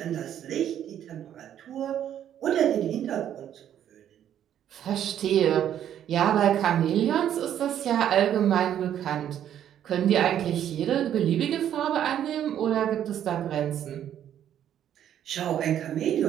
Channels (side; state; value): left; quieter; 10.3 dB